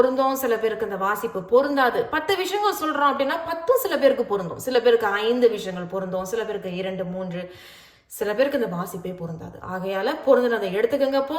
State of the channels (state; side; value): identical; both; correlation 1.00